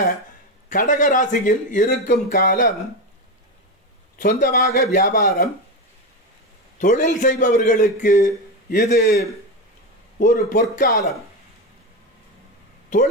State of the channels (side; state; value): both; normal; correlation 0.16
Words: கடகராசியில் இருக்கும் காலம். சொந்தமாக வியாபாரம், தொழில் செய்பவர்களுக்கு இது ஒரு பொற்காலம்.